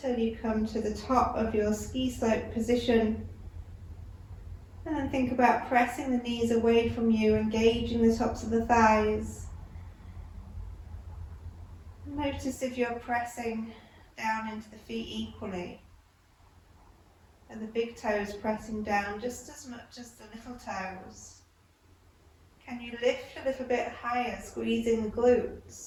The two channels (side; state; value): both; identical; correlation 1.00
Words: you come to the top of your ski slope position. And then think about pressing the knees away from you, engaging the tops of the thighs. Notice if you're pressing down into the feet equally. Are the big toes pressing down just as much as the little toes? Can you lift a little bit higher, squeezing the